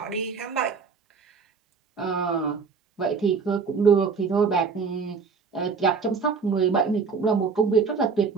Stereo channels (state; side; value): quieter; left; 5.3 dB